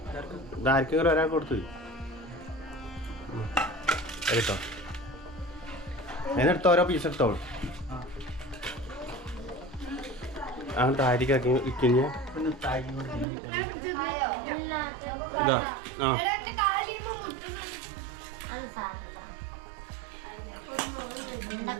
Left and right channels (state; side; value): drops out; left; at 13.2 s